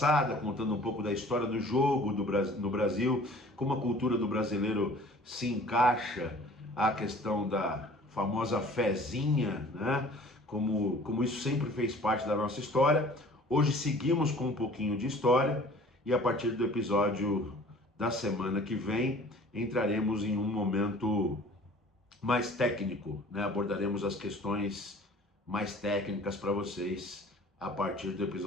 contando um pouco da história do jogo no Brasil, como a cultura do brasileiro se encaixa à questão da famosa fezinha, né? Como isso sempre fez parte da nossa história. Hoje seguimos com um pouquinho de história e a partir do episódio da semana que vem entraremos em um momento mais técnico, né? Abordaremos as questões mais técnicas para vocês a partir do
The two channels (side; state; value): both; normal; correlation 0.49